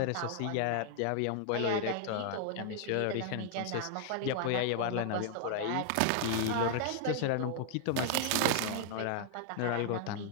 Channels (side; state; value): both; different; correlation 0.00